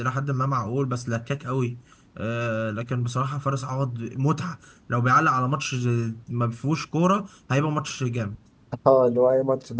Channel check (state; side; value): identical; both; correlation 1.00